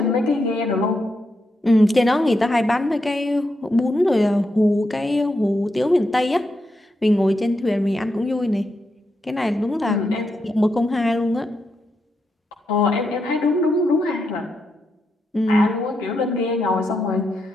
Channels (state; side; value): normal; both; correlation 0.83